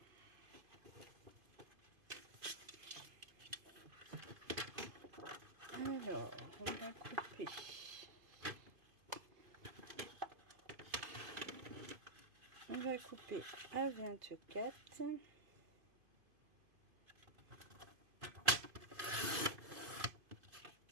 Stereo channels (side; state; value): left; late; 2.5 ms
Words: Alors, on va couper. On va couper à 24.